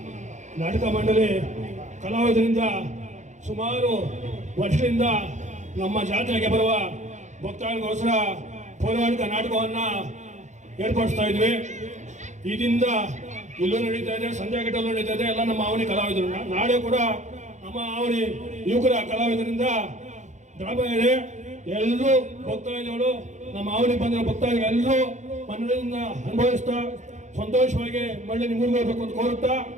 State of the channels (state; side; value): late; left; 0.35 ms